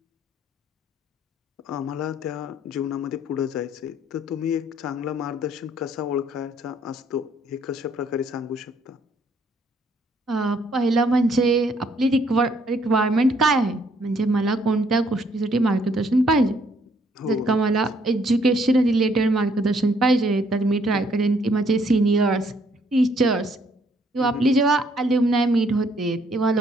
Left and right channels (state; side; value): normal; both; correlation 0.67